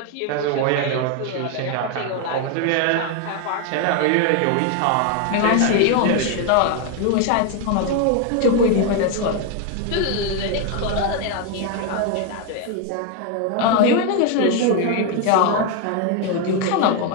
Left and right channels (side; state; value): both; different; correlation 0.01